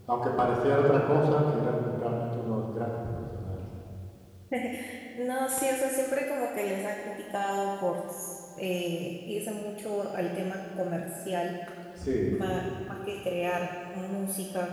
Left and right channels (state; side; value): identical; both; correlation 1.00